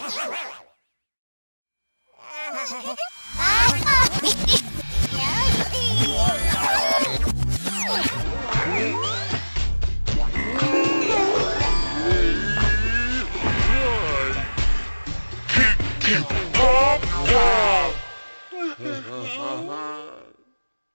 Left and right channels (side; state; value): both; inverted; correlation -1.00